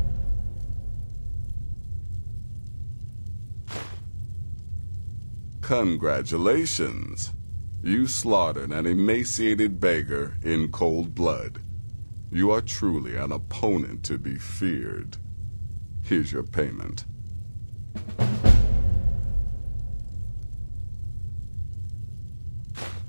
Congratulations. You slaughtered an emaciated beggar in cold blood. You are truly an opponent to be feared. Here's your payment.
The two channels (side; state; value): both; inverted; correlation -1.00